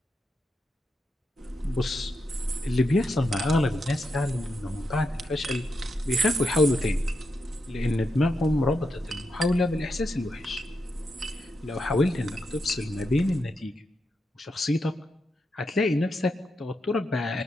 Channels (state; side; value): normal; both; correlation 0.85